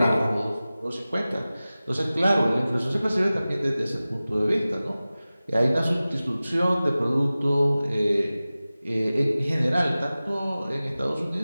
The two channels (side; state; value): both; inverted; correlation -0.97